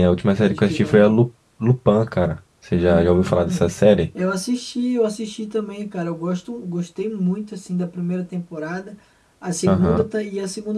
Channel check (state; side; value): identical; both; correlation 1.00